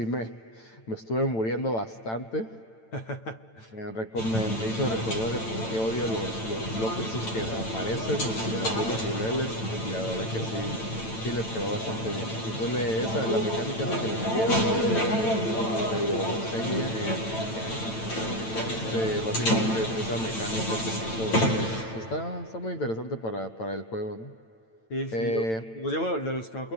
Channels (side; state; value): right; late; 9.0 ms